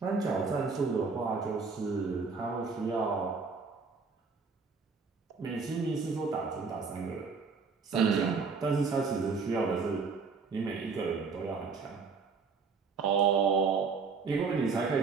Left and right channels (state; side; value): quieter; left; 4.9 dB